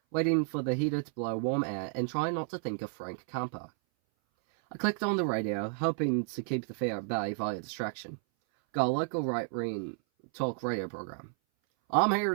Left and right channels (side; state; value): left; silent; 56 dB below the other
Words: waiting for the heater to blow warm air and trying not to think of Frank Campo. I clicked on the radio, hoping to keep the fear at bay via distraction. Got a local right-wing talk radio program. "I'm here